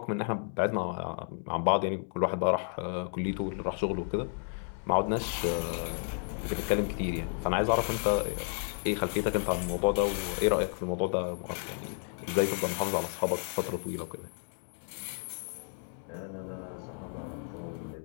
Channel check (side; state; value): right; silent; 56 dB below the other